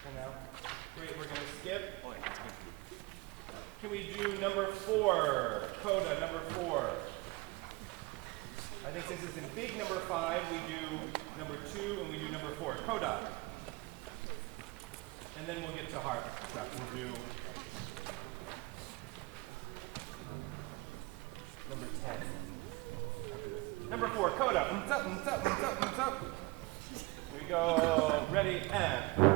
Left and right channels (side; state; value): left; quieter; 23.6 dB